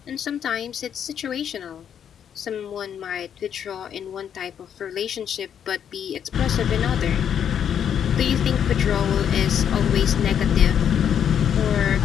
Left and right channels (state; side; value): quieter; right; 8.7 dB